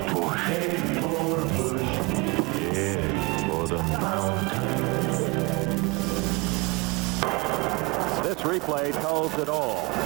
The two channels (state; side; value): quieter; left; 26.1 dB